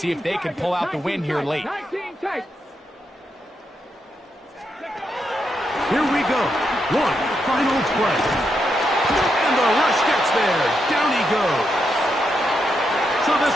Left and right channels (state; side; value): normal; both; correlation 0.82